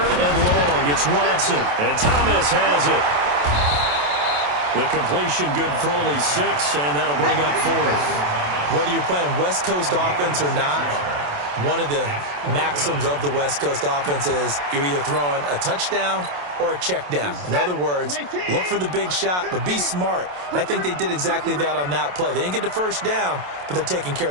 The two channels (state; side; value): late; left; 27 ms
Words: and long, it's Watson, and Thomas has it. The completion good for only 6, and that'll bring up 4th. Whether you're playing West Coast offense or not, one of the maxims of the West Coast offense is you're either throwing a touchdown or a check down. In other words, look for the big shot, but be smart. And I think they did exactly that on that play. They didn't get the 1st down, but they're taking care